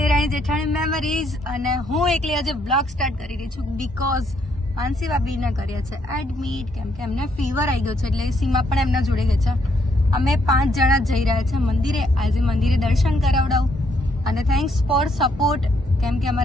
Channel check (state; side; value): normal; both; correlation 0.72